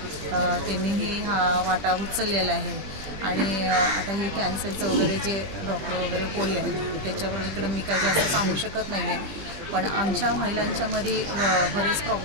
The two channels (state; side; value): late; left; 20 ms